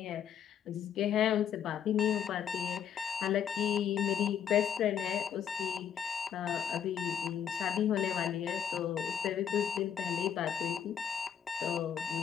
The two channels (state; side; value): quieter; right; 8.6 dB